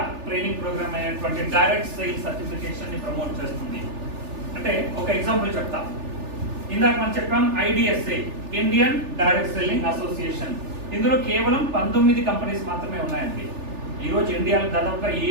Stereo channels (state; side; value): late; left; 3.4 ms